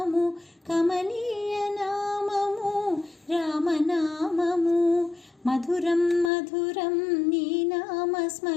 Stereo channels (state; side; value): drops out; right; at 6.3 s